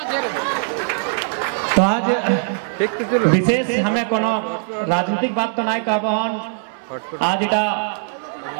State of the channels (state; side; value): silent; left; digital silence